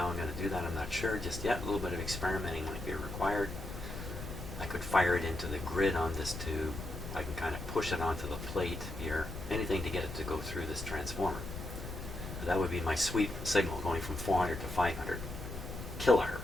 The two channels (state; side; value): noise; left; rumble, 9 dB below the sound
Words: I'm going to do that I'm not sure just yet. A little bit of experimenting might be required. I could fire it into the grid on this tube. I can kind of push it onto the plate here. Anything to get it to go through this transformer. That would be my sweep signal going from 400 to 500